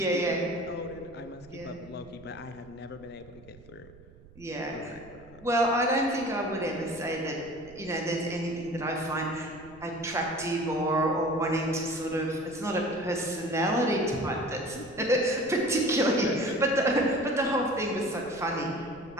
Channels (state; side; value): noise; right; rumble, 22 dB below the sound